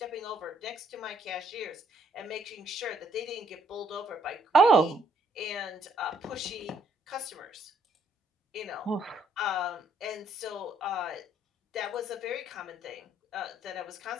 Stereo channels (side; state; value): both; normal; correlation 0.67